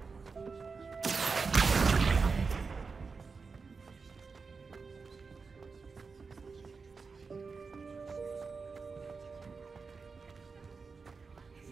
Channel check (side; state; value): left; quieter; 4.8 dB